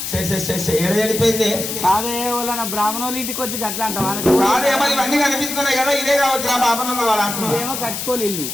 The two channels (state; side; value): noise; left; hiss, 5 dB below the sound